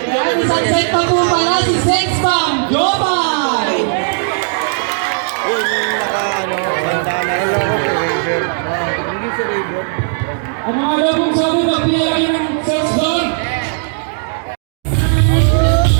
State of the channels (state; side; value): silent; left; digital silence